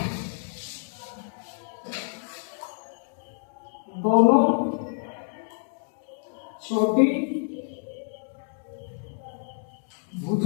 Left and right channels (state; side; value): silent; right; digital silence